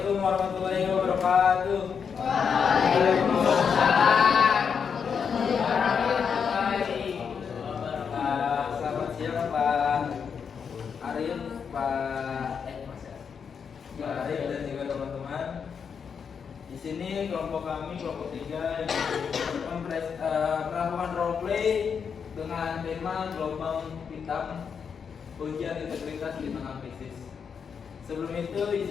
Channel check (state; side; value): quieter; right; 6.6 dB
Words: warahmatullahi wabarakatuh. Waalaikumsalam. Selamat siang Pak Arif, Pak Arif dan juga teman-teman. Di sini kelompok kami, kelompok 3 melakukan role play dengan tema gelombang hitam ujian integritas di tengah krisis. Sebelum itu